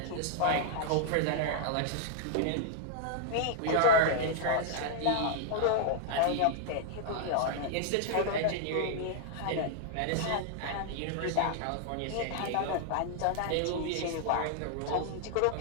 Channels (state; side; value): different; both; correlation -0.01